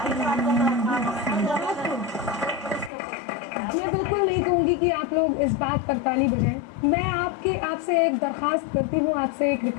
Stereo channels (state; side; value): drops out; right; at 2.9 s